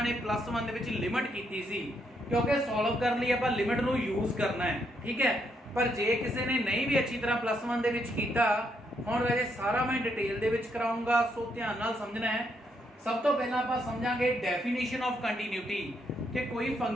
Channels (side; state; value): both; normal; correlation 0.76